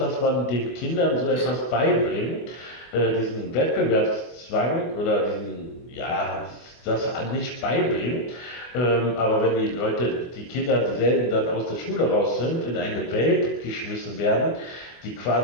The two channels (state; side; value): late; right; 24 ms